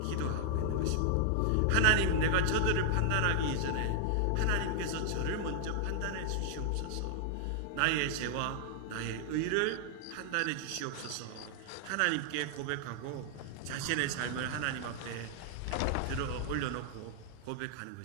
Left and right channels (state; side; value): different; both; correlation 0.00